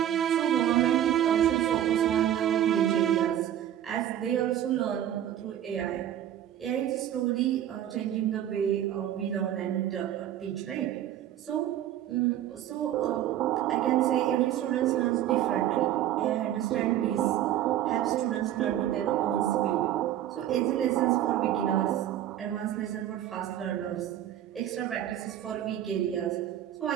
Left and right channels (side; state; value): left; quieter; 11.5 dB